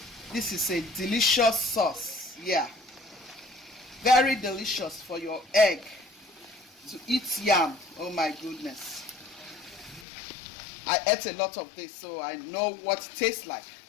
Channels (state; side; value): drops out; right; at 10.1 s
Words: This is a delicious sauce. Yeah, very delicious for your egg to eat yam. Oh my goodness, I ate a lot of this, so I know what it tastes like